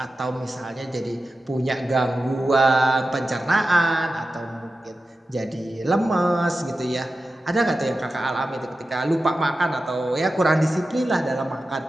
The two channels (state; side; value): normal; both; correlation 0.93